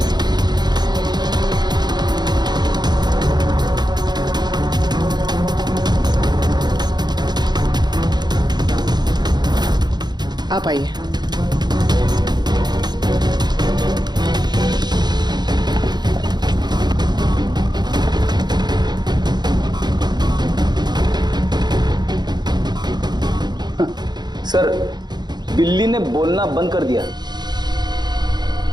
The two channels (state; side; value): late; left; 0.20 ms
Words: आप आइए। सर बिल्ली ने बोलना बंद कर दिया।